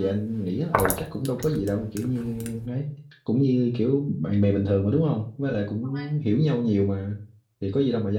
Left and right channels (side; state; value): both; identical; correlation 1.00